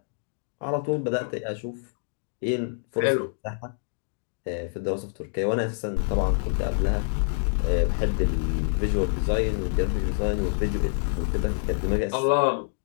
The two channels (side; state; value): right; silent; digital silence